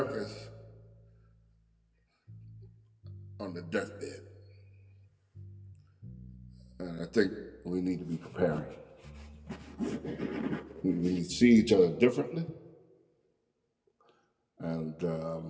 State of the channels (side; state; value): both; identical; correlation 1.00